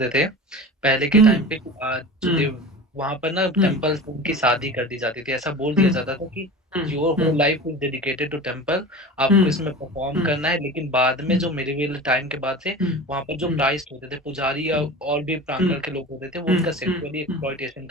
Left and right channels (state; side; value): normal; both; correlation 0.34